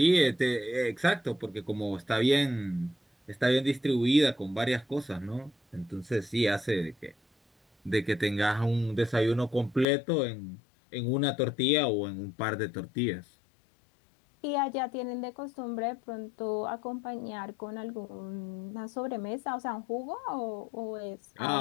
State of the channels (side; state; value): right; drops out; at 9.9 s